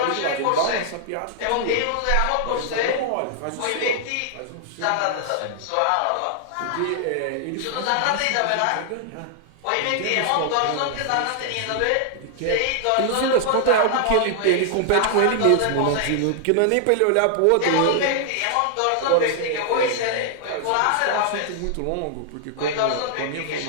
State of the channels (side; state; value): both; different; correlation 0.00